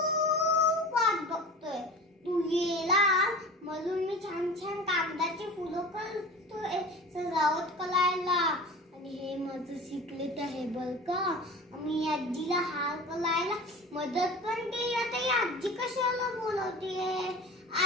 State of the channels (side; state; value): both; normal; correlation 0.36